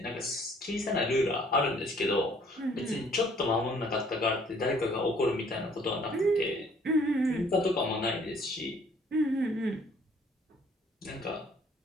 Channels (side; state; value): both; normal; correlation 0.60